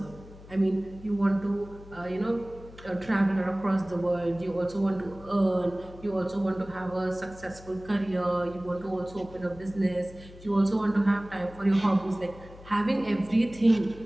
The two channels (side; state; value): left; noise; hum, 19 dB below the sound